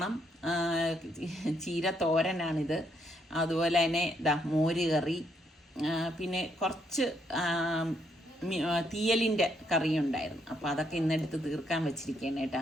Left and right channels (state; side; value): normal; both; correlation 0.73